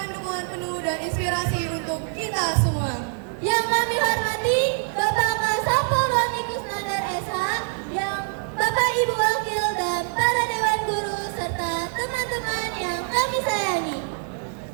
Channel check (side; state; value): left; silent; 61 dB below the other